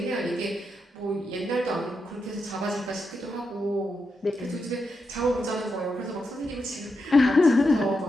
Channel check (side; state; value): both; normal; correlation 0.85